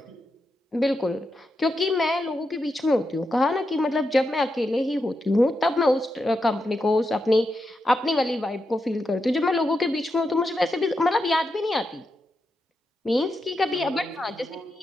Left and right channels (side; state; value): both; normal; correlation 0.86